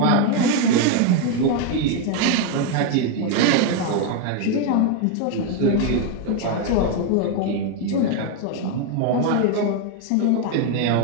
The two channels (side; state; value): both; different; correlation 0.01